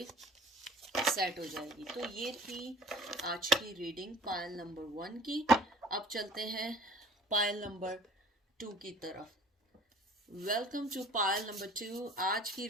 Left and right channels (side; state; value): both; normal; correlation 0.50